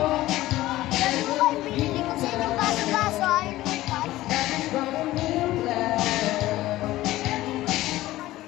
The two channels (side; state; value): right; quieter; 16.4 dB